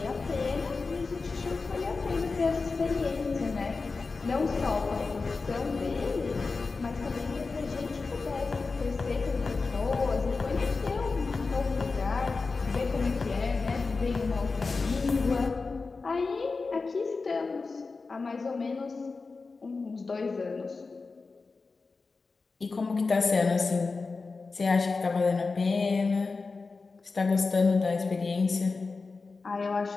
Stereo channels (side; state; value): right; quieter; 4.1 dB